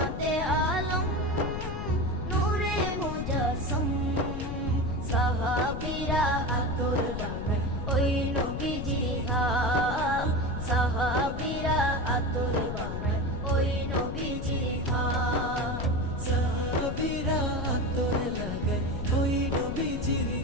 আলম নূরে মুজাসসম। সাহাবীরা আতর বানায় ওই নবীজির ঘাম, সাহাবীরা আতর বানায় ওই নবীজির ঘাম। সাহাবীরা আতর লাগায় ওই নবীজির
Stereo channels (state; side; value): noise; left; rumble, 5 dB below the sound